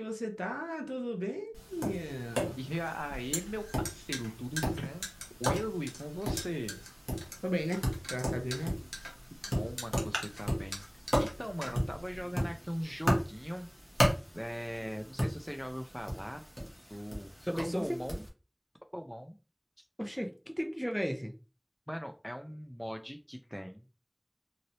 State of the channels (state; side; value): identical; both; correlation 1.00